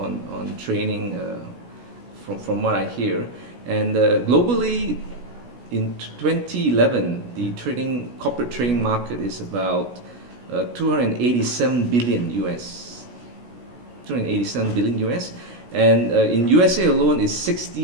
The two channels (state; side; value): late; left; 16 ms